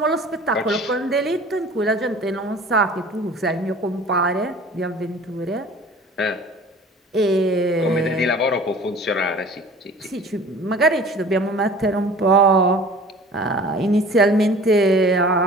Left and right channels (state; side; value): normal; both; correlation 0.45